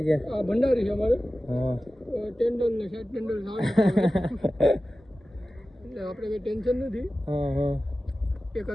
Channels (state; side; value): normal; both; correlation 0.95